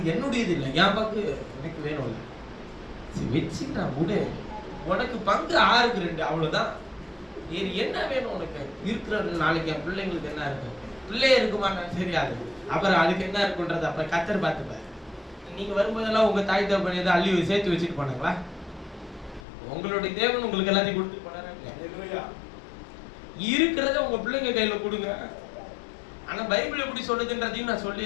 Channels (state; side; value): drops out; right; at 19.4 s